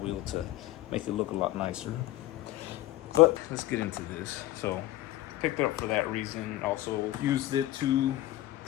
to make it look a lot nicer. But let's get into this. So picked it up for that reason. Also used it to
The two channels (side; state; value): right; quieter; 15.8 dB